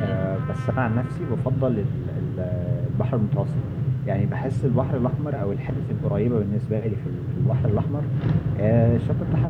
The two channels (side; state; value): both; identical; correlation 1.00